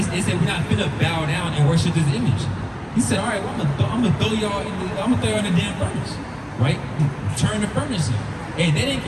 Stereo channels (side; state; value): both; identical; correlation 1.00